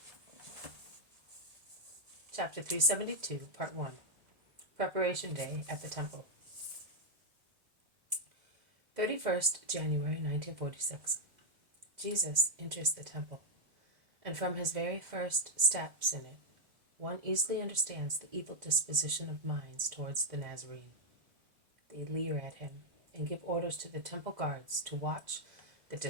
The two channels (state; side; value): late; left; 2.0 ms